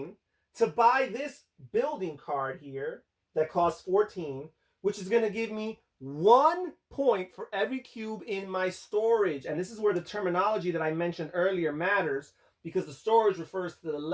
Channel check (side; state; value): both; identical; correlation 1.00